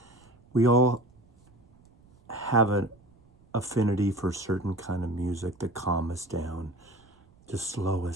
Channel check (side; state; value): right; noise; rumble, 30 dB below the sound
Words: We all have an affinity for certain kind of music to calm us down, to slow